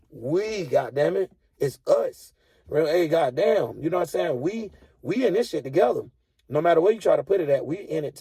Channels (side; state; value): both; identical; correlation 1.00